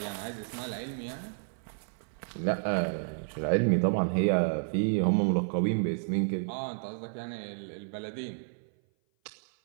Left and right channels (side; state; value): left; silent; 56 dB below the other